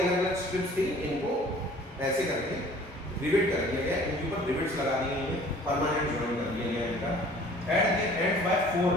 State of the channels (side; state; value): both; normal; correlation 0.50